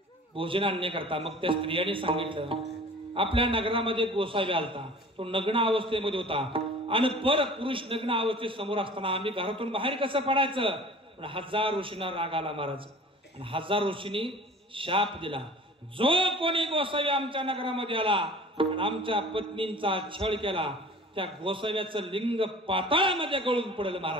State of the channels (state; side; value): normal; both; correlation 0.44